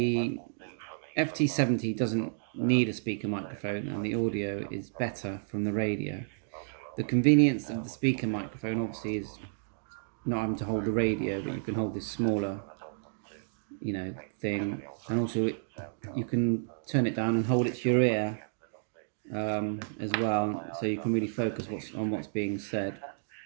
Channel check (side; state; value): left; silent; digital silence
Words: FT70 doesn't need a speaker microphone and the audio is better from the radio. The convenience of the speaker microphone obviously is not having to hold the radio, but you can hold this smaller, thing, and also you can turn it down and hold it to your ear as well, so you can really focus on what's being said.